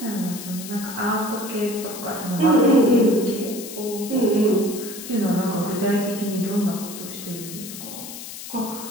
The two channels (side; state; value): left; noise; hiss, 11 dB below the sound